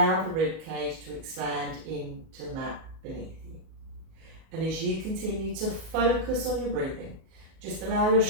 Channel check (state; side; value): late; left; 38 ms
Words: the rib cage to expand into the mat beneath you. And as you continue to focus on your breathing, just allow your